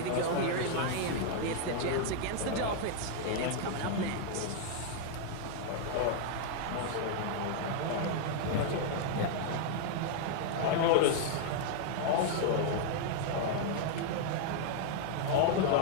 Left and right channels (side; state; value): both; different; correlation 0.00